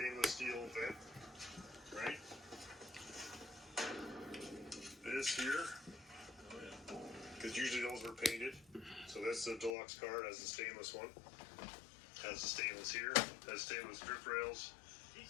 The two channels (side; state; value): right; drops out; at 9.8 s